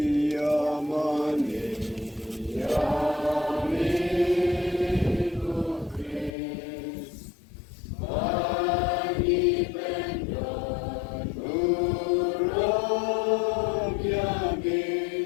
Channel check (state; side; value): drops out; right; at 6.4 s